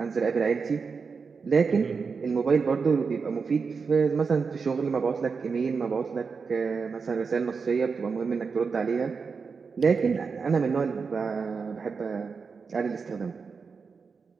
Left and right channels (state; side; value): quieter; left; 5.2 dB